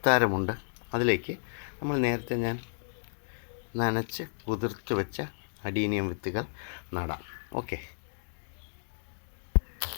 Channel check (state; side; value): silent; right; digital silence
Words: അതിലേക്ക് നമ്മൾ നേരത്തെ ഞാൻ നനച്ച് കുതിർത്ത് വെച്ച അഡീനിയം വിത്തുകൾ നടാം. ഓക്കെ,